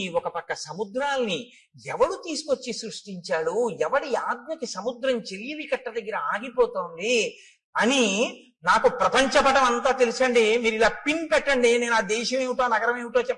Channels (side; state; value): both; identical; correlation 1.00